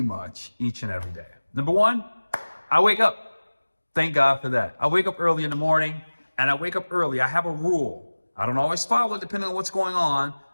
much each and every day. Number one, I wake up. Thank God for that. I wake up early in the morning and I wake up early. I have a rule. I don't always follow it depending on what's going on,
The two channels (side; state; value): both; inverted; correlation -1.00